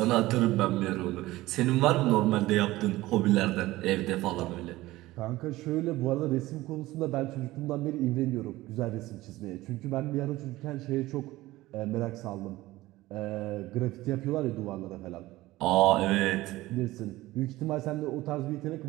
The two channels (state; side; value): quieter; left; 17.8 dB